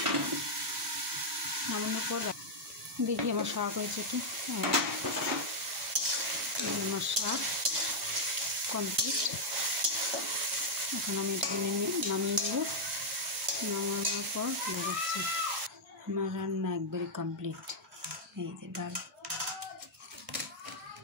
নামানোর পর দেখি আমার শাক হয়েছে কি। আমার শাক কমপ্লিট। এখন আমি এটা নামিয়ে নেব। নামানোর পর দেখাচ্ছি। আমার রান্না একবারে কমপ্লিট। এই যে ডাল,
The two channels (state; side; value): normal; both; correlation -0.04